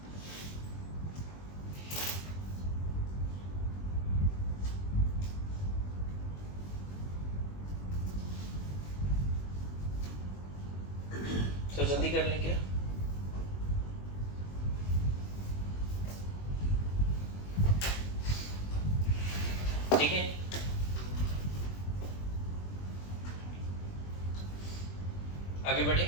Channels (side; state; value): right; late; 21 ms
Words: तो जल्दी कर लें क्या? ठीक है, आगे बढ़े।